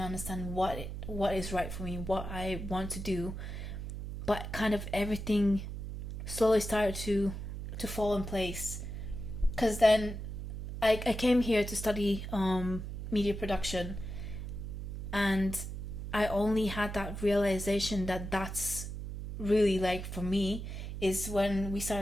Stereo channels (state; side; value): noise; right; hum, 6 dB below the sound